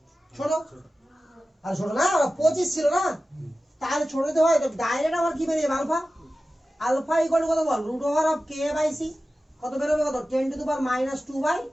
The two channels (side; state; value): both; normal; correlation 0.95